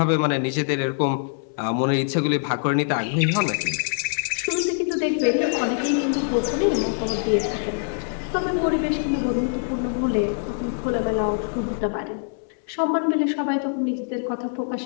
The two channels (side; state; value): right; silent; 60 dB below the other